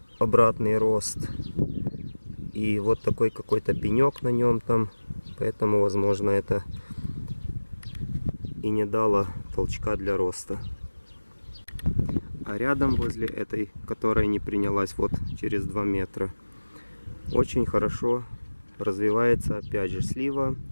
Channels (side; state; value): both; inverted; correlation -1.00